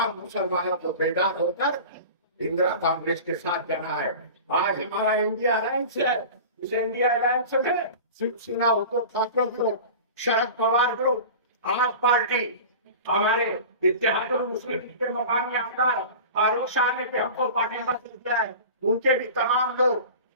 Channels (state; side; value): inverted; both; correlation -0.35